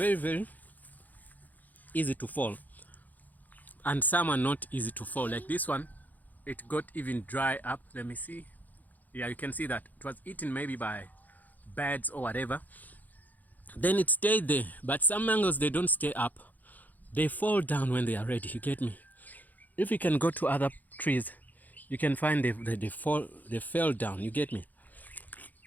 very easy to fall. And some are not easy to fall. Like this one, it got even dry up. Let me see. Yeah, you can see that. It was eaten maybe by birds or whatever. Then it stayed there. But some mangoes, they don't stay up. They fall down when they are ready. You get me? If you can go to other trees, you can find they fell down. You get me?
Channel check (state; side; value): late; right; 0.082 ms